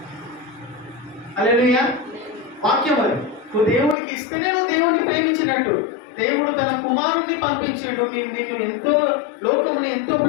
హల్లెలూయా. వాక్యం అది. నువ్వు దేవునికి ఇస్తేనే నువ్వు దేవుని ప్రేమించినట్టు. దేవుడు తన కుమారుణ్ణి పంపించిండు. నిన్ను ఎంతో, లోకముని ఎంతో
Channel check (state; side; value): drops out; right; at 4.0 s